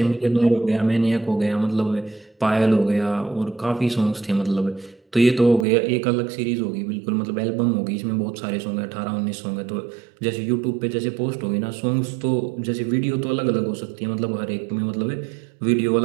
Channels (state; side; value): drops out; left; at 5.7 s